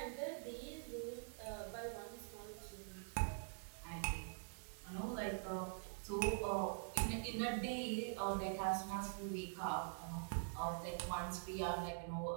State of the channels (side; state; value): left; silent; digital silence